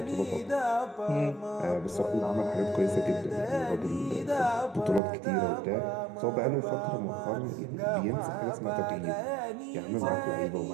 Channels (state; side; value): drops out; left; at 5.0 s